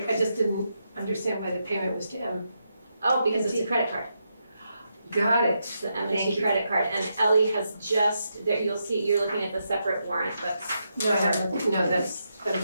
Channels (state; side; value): inverted; both; correlation -0.83